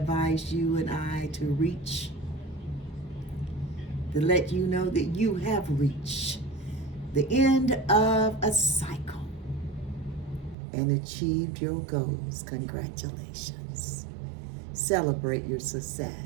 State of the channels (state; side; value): drops out; left; at 10.6 s